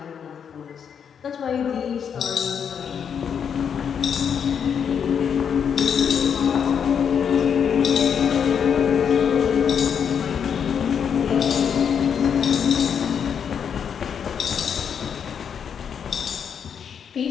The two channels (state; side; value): quieter; right; 7.5 dB